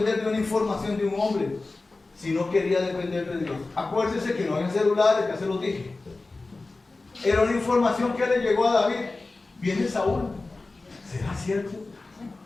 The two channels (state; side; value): quieter; right; 3.4 dB